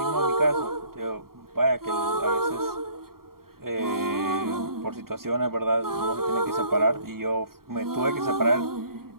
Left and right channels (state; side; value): late; left; 0.93 ms